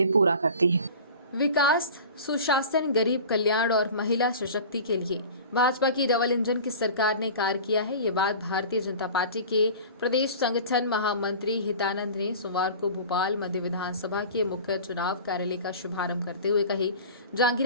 पूरा करती है। विकास, सुशासन, गरीब कल्याण और महिला सशक्ति के लिए भाजपा की डबल इंजन की सरकार ने कार्य किया है। ये बात भारतीय जनता पार्टी के प्रदेश संगठन महामंत्री हितानंद ने सोमवार को भोपाल मध्य विधानसभा के मुख्य चुनाव कार्यालय का शुभारंभ करते हुए कही।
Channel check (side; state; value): both; inverted; correlation -0.38